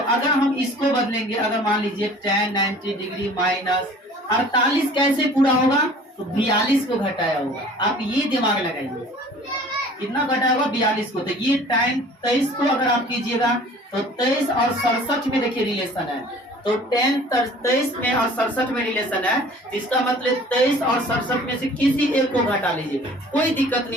हम इसको बदलेंगे, अगर मान लीजिए tan 90 डिग्री माइनस 48 कैसे पूरा होगा, तो 42 को घटाया होगा। आप ये दिमाग लगाइए, कितना घटाया होगा, 42 को। तो ये tan 23 को अगर आप कीजिएगा तो 23 और 67 में देखिए रिलेशन है, तो tan 23 में और 67 में रिलेशन है। इसका मतलब 23 और 67 में से किसी एक को घटा लीजिए, कोई दिक्कत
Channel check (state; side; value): normal; both; correlation 0.48